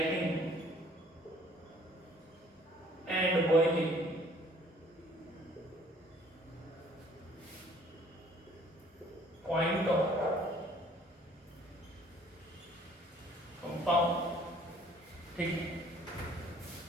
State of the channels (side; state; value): both; normal; correlation 0.57